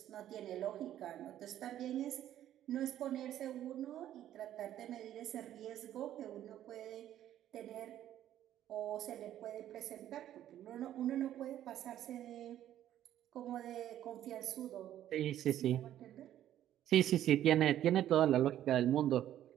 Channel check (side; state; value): left; quieter; 11.9 dB